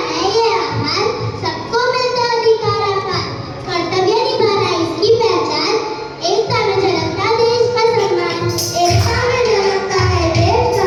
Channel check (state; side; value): identical; both; correlation 1.00